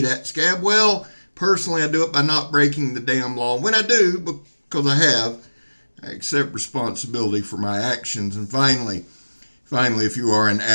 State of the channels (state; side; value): inverted; both; correlation -1.00